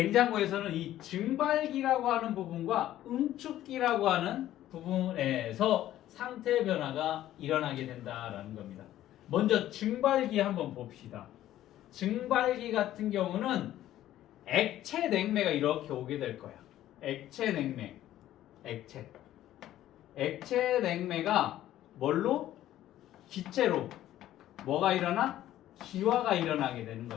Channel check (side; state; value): right; quieter; 13.2 dB